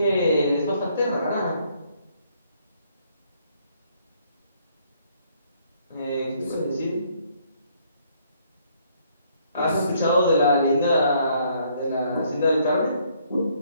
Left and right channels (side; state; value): both; inverted; correlation -0.67